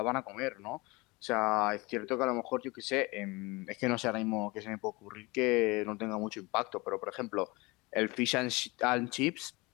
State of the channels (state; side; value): quieter; right; 24.9 dB